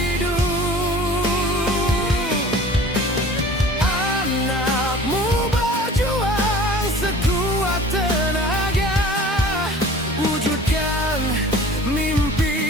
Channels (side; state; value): both; normal; correlation 0.44